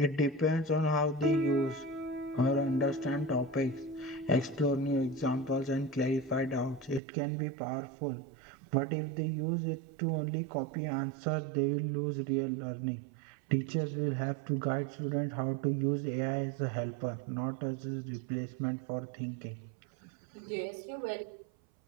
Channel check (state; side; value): drops out; left; at 7.0 s